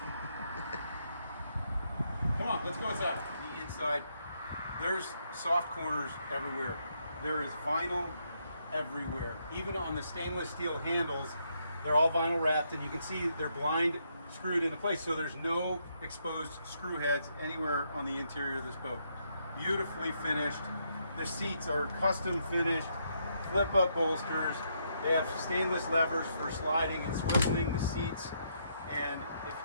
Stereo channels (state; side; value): inverted; both; correlation -0.76